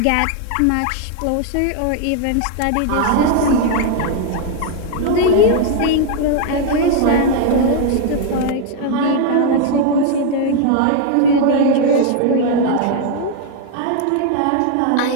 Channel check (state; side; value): different; both; correlation 0.00